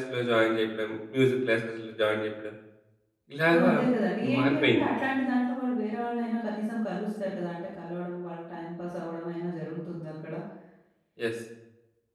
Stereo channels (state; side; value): identical; both; correlation 1.00